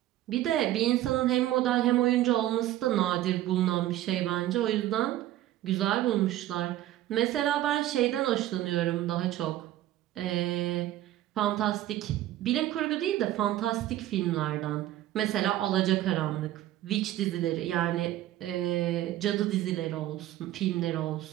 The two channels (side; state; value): left; quieter; 14.0 dB